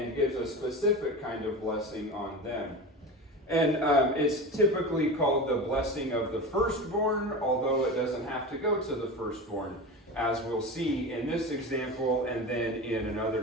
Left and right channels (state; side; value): normal; both; correlation 0.28